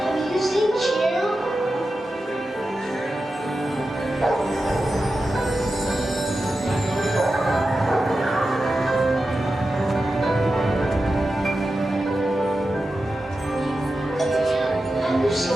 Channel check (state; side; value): normal; both; correlation 0.91